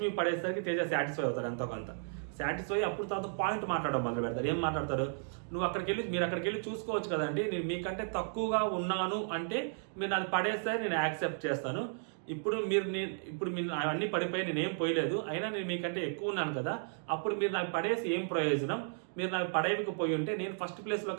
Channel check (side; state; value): left; silent; digital silence